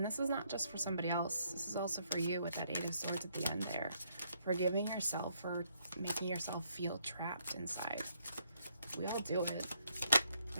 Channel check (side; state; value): both; inverted; correlation -0.72